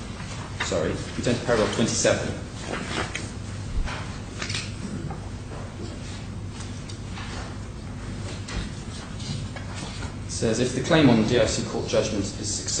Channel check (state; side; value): identical; both; correlation 1.00